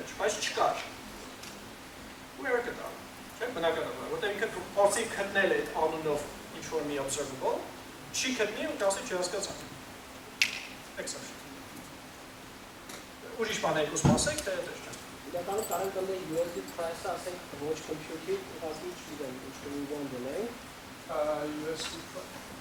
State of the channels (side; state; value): both; identical; correlation 1.00